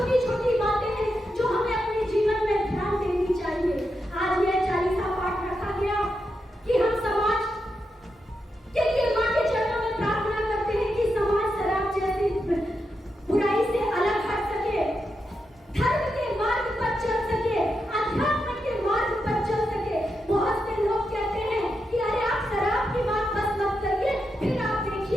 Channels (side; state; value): both; normal; correlation 0.86